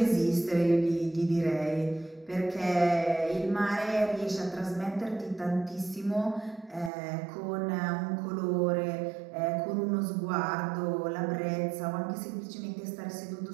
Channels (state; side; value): drops out; left; at 6.9 s